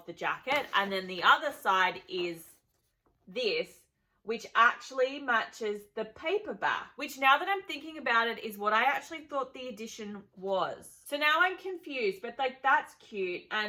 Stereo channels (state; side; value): identical; both; correlation 1.00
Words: the jacket, and then the other side is this, which actually matches the paperback, which now that I'm thinking about it is what I actually thought the edition was. So now I'm confused, but like that's cute,